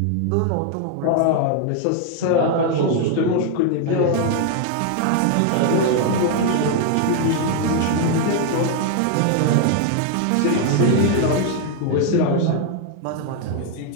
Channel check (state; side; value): different; both; correlation 0.00